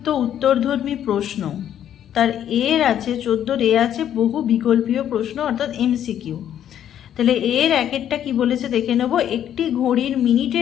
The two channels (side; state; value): right; quieter; 10.3 dB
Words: উত্তরধর্মী প্রশ্ন, তার এর আছে 14 এ আছে বহু বিকল্পীয় প্রশ্ন অর্থাৎ এমসিকিউ। তাহলে এর একেরটা কি বলেছে দেখে নেব। একটি ঘড়ির